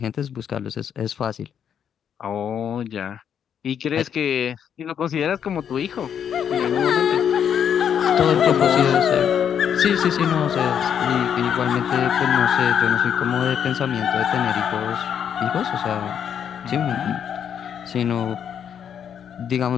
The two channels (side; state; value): right; quieter; 8.4 dB